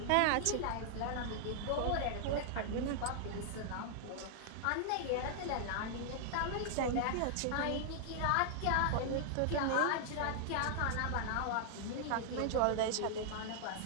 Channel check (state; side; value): different; both; correlation 0.00